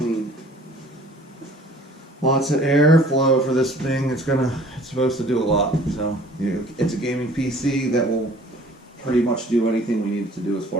Lots of airflow for this thing. It's supposed to do a lot. So it's a gaming PC that will pretty much do anything we need it to do as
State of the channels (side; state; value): both; normal; correlation 0.51